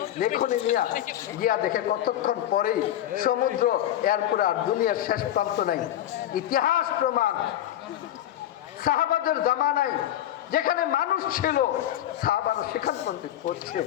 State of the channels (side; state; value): right; quieter; 12.3 dB